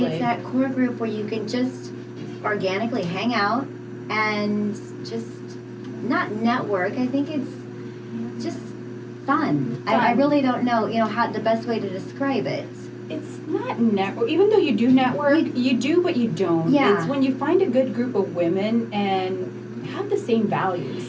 It's that core group where you can just organically hang out and just not network. I think it's just fun. I really don't know, how the best way to describe it. It's not network. Even though you do network, you do, but you don't. Yeah. It's when you find a good group of women and have the same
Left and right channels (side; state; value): both; identical; correlation 1.00